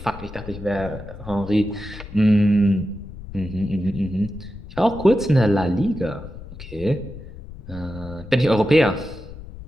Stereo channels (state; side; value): noise; left; rumble, 14 dB below the sound